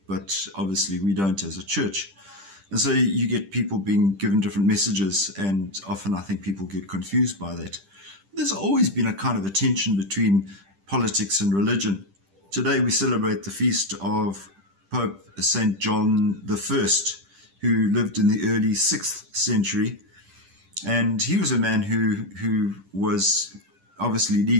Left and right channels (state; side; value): late; left; 10 ms